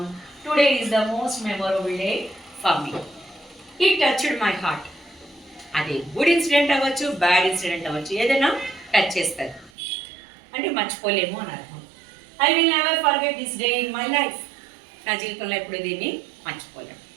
Today is the most memorable day for me. It touched my heart. అది good incident అవ్వచ్చు, bad incident అవ్వచ్చు, ఏదైనా touch చేస్తారు అంటే మర్చిపోలేము అని అర్థం. I will never forget this day in my life. నా జీవితంలో ఎప్పుడు దీన్ని మర్చిపోలేము.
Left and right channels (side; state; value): left; drops out; at 9.7 s